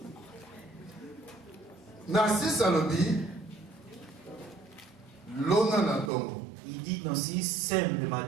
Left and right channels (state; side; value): drops out; left; at 6.1 s